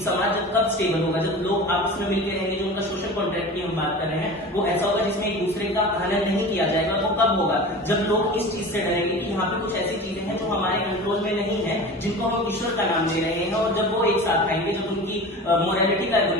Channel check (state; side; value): normal; both; correlation 0.34